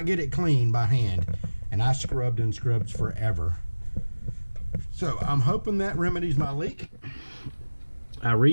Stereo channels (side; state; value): both; inverted; correlation -1.00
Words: get it clean by hand, and I scrubbed and scrubbed forever. So I'm hoping that remedies my leak. I